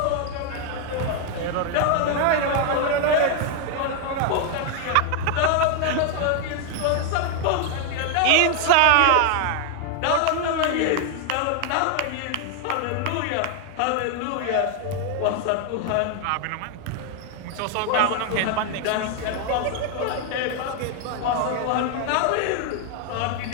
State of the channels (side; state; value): both; different; correlation 0.00